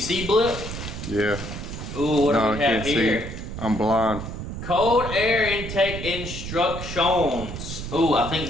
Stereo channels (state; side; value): noise; right; rumble, 8 dB below the sound